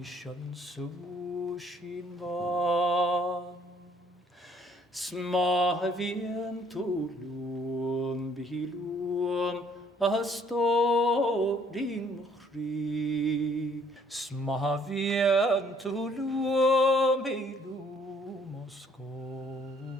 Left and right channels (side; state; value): both; normal; correlation 0.62